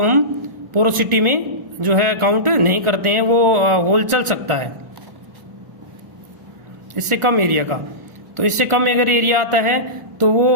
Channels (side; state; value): left; late; 1.4 ms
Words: हम पोरोसिटी में जो है काउंट नहीं करते हैं, वो होल चल सकता है इससे कम एरिया का। तो इससे कम अगर एरिया आता है तो वो